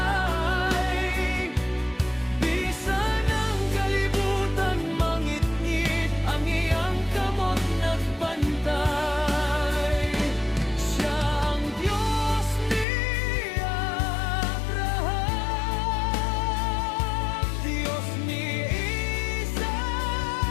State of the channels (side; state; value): right; drops out; at 12.9 s